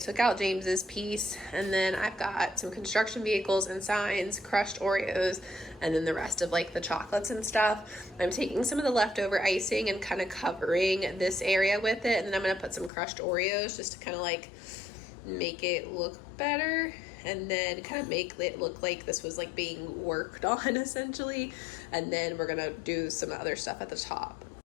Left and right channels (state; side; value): drops out; right; at 12.9 s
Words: out James's piece, and then I've got some construction vehicles and signs, crushed Oreos, and then the rest of like the chocolates and stuff. I'm taking some of the leftover icing and kind of covering this area with it, and then I'm gonna put some crushed Oreos just to kind of like make it look better, and then kind of make it look like this was like being worked on essentially. And then we're gonna do some other stuff at the top.